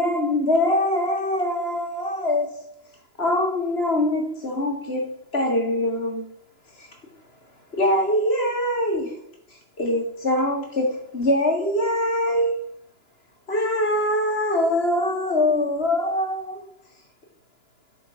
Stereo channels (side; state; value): right; late; 2.9 ms